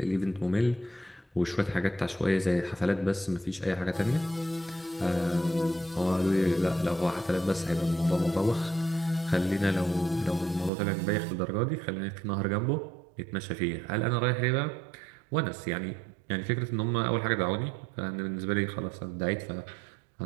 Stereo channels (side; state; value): left; drops out; at 10.7 s